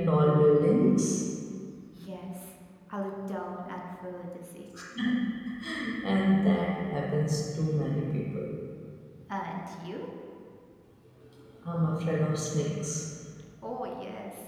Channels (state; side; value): identical; both; correlation 1.00